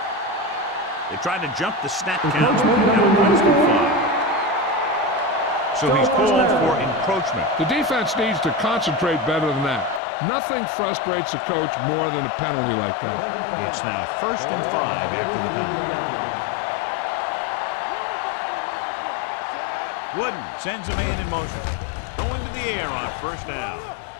They tried to jump the snap count. So he's called for encroachment. The defense needs to concentrate better than that. Nothing frustrates a coach more than a penalty like that. It's now 1st and 5 after the penalty. Wooden sends a man in motion. Going to the air on 1st down.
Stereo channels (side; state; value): right; drops out; at 10.0 s